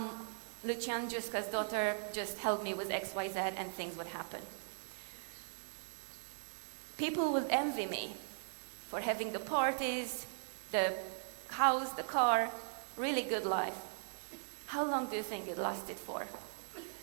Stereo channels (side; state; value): left; silent; 52 dB below the other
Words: Giusca's daughter, just help me with X, Y, Z, and things would happen. People would envy me for having the parties, the house, the car, really good life. How long do you think it lasted for?